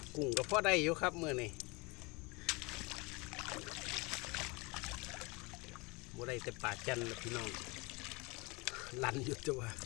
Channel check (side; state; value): right; quieter; 26.8 dB